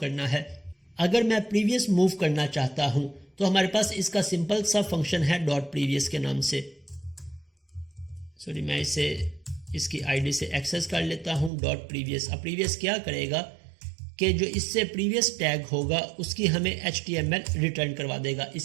करना है। अगर मैं प्रीवियस मूव करना चाहता हूं तो हमारे पास इसका सिंपल सा फंक्शन है डॉट प्रीवियस के नाम से। सॉरी, मैं इसे इसकी आईडी से एक्सेस कर लेता हूं, डॉट प्रीवियस। अब प्रीवियस क्या करेगा कि जो इससे प्रीवियस टैग होगा उसकी हमें HTML रिटर्न करवा देगा।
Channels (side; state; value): left; drops out; at 11.5 s